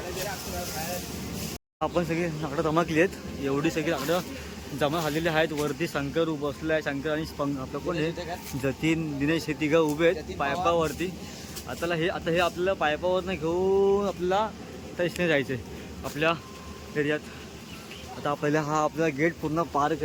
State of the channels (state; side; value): identical; both; correlation 1.00